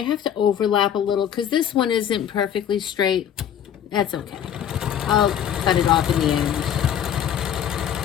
have to overlap a little because this one isn't perfectly straight. That's okay. I'll cut it off in the end.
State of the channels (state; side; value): quieter; right; 9.6 dB